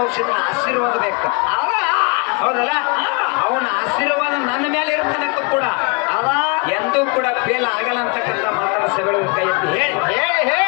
ರಕ್ಷಿತನ ಆಶೀರ್ವಾದ ಬೇಕು ಹೌದಲ್ಲ ಅವನ ಆಶೀರ್ವಾದ ನನ್ನ ಮೇಲೆ ಇರ್ತದಕ್ಕೂ ಕೂಡ ಅವ ಎಂದೂ ಕೂಡ ಫೇಲ್ ಆಗಲ್ಲ ಅಂತಕ್ಕಂಥ ಮಾತನ್ನ ಸಭೆಗಳಿಗೆ ಕೈ ಎತ್ತಿ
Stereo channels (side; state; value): right; quieter; 30.8 dB